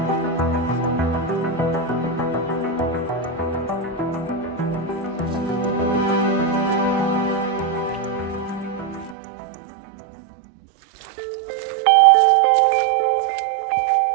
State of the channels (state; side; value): drops out; left; at 9.2 s